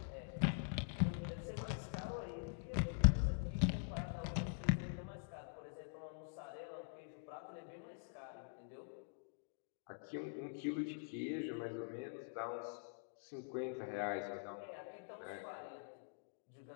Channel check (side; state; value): right; silent; digital silence